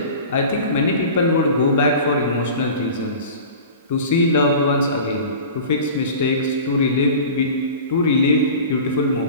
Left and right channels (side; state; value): both; inverted; correlation -0.37